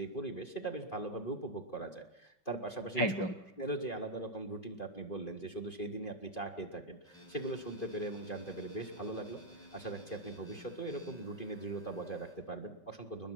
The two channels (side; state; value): right; late; 5.3 ms